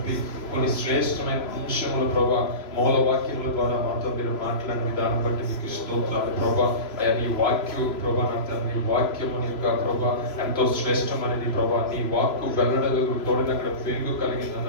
కొన్ని శ్రేష్టమైన అంశములు ప్రభా మూల వాక్యముల ద్వారా మాతో మీరు మాట్లాడిన విధానం బట్టి మీకు స్తోత్రాలు ప్రభా. అయ్యా నీ వాక్యం ప్రభా నా తండ్రి వాక్యము యొక్క ప్రభా ఎంతో శ్రేష్టమైనది ప్రభా. నీ వాక్కు వెల్లడలు తోడిన అక్కడ వెలుగు కలిగింది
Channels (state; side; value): late; right; 3.0 ms